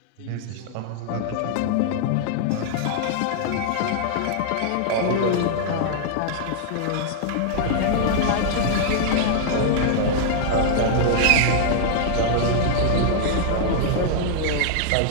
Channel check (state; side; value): different; both; correlation -0.01